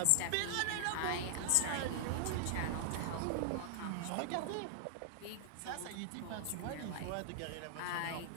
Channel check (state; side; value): different; both; correlation -0.01